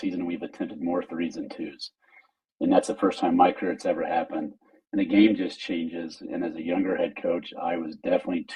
we've attempted more threes than twos. And that's the first time in my career it's ever happened. And the game just changes. And as a younger head coach, I was definitely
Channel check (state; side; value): identical; both; correlation 1.00